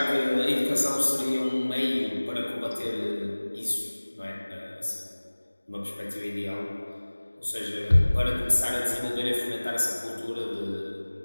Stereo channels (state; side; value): inverted; both; correlation -1.00